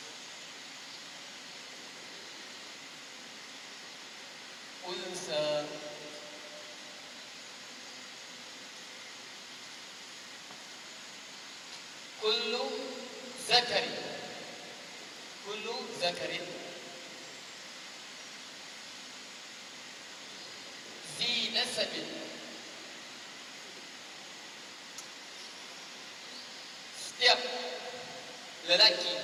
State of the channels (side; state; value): both; identical; correlation 1.00